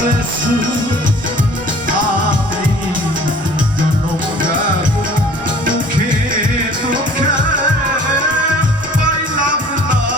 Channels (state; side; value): normal; both; correlation 0.50